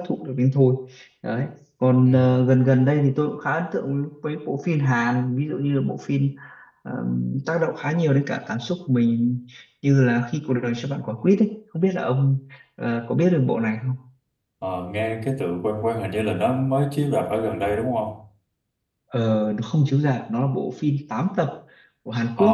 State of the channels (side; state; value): both; identical; correlation 1.00